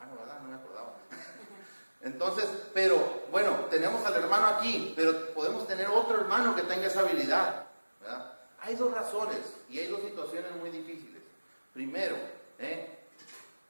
¿verdad? No me acordaba. Entonces, pero bueno, tenemos al hermano aquí, pero podemos tener otro hermano que tenga esa habilidad, ¿verdad? Hay dos razones y hay dos situaciones muy difíciles. Primero,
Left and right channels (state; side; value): inverted; both; correlation -1.00